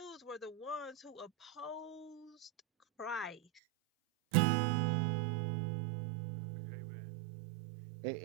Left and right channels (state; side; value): drops out; left; at 3.6 s